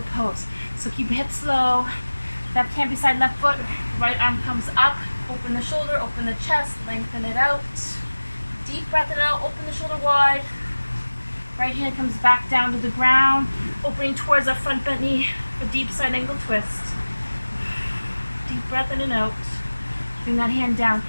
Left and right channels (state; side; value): inverted; both; correlation -1.00